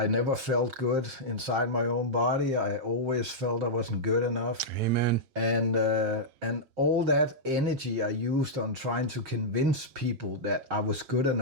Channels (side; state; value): left; late; 7.6 ms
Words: never felt good inside my own body. I always felt I wasn't good enough. Amen. And all that energy I used on trying to convince people that I was good